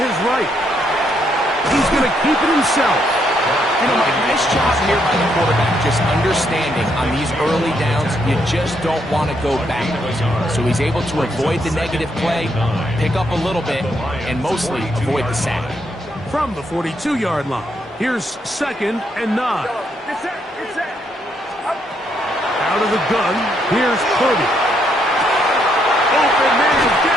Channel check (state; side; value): normal; both; correlation 0.75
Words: right. He's going to keep it himself. You know, Mike, nice job here by the quarterback, just understanding on these early downs, you just don't want to go backwards. So he's able to avoid the negative play, pick up a little bit, and mostly avoid the sack. From the 42-yard line, here's second and 9. Out of the gun, here's Purdy. Open man